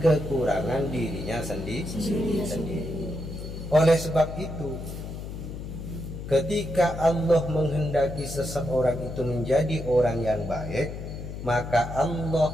kekurangan dirinya sendiri. Oleh sebab itu, ketika Allah menghendaki seseorang itu menjadi orang yang baik, maka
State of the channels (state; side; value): noise; left; hum, 8 dB below the sound